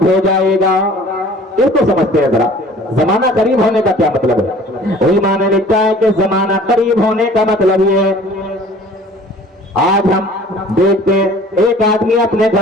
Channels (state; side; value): normal; both; correlation 0.49